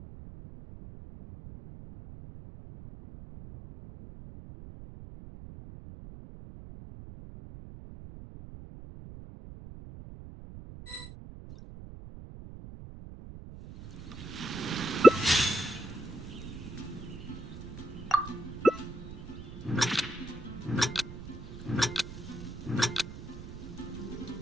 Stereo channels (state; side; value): noise; right; rumble, 12 dB below the sound